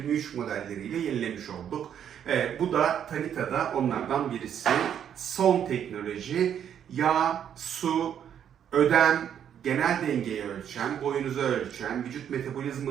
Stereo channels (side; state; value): left; quieter; 9.1 dB